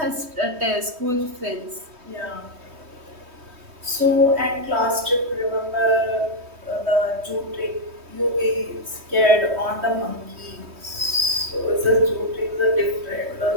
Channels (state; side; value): late; left; 3.2 ms